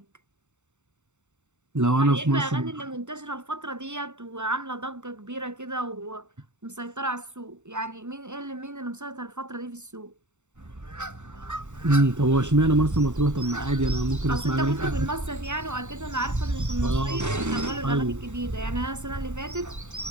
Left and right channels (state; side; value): late; left; 0.84 ms